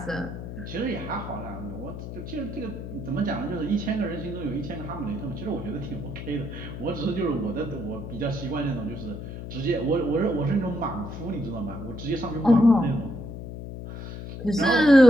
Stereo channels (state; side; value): noise; left; hum, 9 dB below the sound